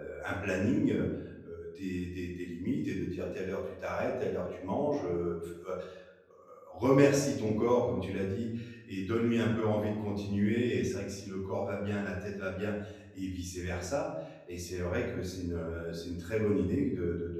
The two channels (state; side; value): identical; both; correlation 1.00